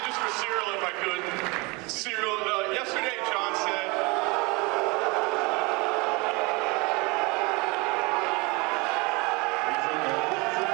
just for Ciryl, if I could. Ciryl, yesterday Jon said,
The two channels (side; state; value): left; quieter; 26.8 dB